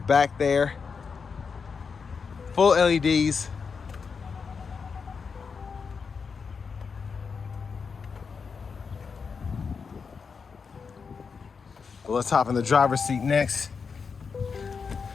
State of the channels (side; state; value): right; quieter; 5.5 dB